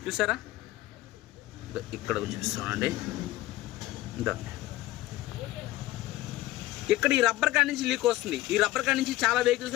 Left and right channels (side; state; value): right; quieter; 16.8 dB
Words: చూసారా? ఇక్కడ చూస్తానండి, ఇక్కడ ఈ రబ్బర్ కాడి నుంచి లీక్ వస్తుంది. ఈ రబ్బర్ కాడి నుంచి చాలా